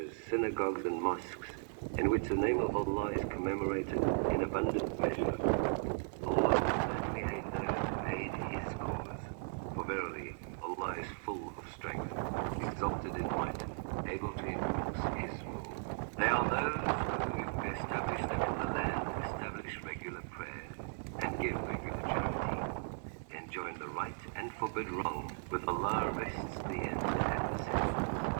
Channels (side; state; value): left; silent; digital silence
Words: synagogues and mosques, in which the name of Allah is commemorated in abundant measure. Allah will certainly aid those who aid His cause. For verily, Allah is full of strength, exalted in might, able to enforce His rule. They are those who, if we establish them in the land, establish regular prayer and give regular charity, enjoin the right and forbid wrong. With Allah rests the end and the center